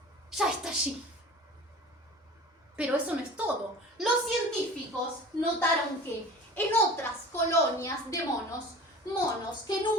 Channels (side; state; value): both; normal; correlation 0.40